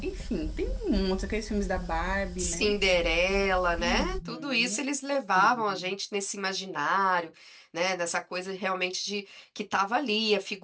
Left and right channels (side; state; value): both; identical; correlation 1.00